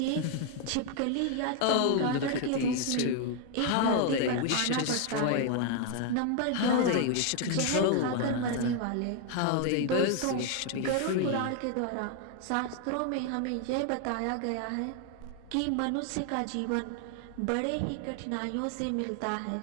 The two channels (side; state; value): both; different; correlation 0.00